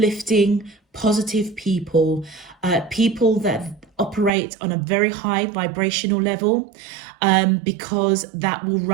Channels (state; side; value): drops out; left; at 4.3 s